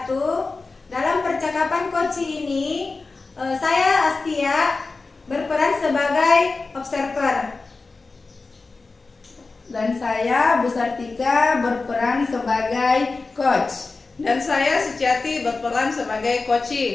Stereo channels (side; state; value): right; quieter; 3.9 dB